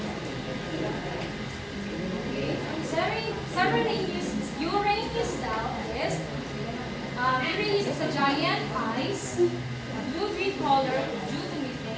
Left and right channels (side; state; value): both; identical; correlation 1.00